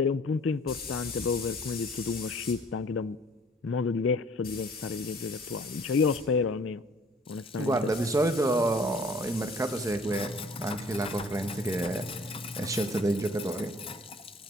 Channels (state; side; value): normal; both; correlation 0.54